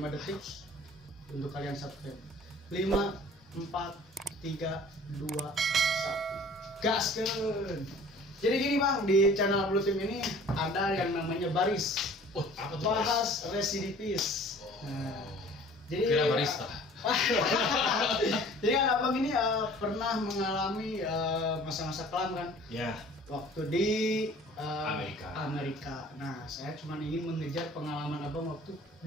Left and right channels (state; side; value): normal; both; correlation 0.48